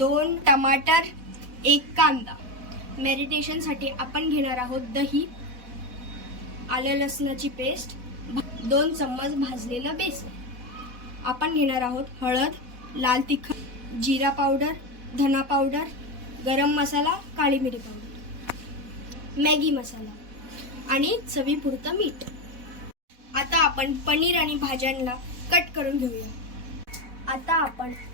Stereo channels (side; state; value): left; late; 4.1 ms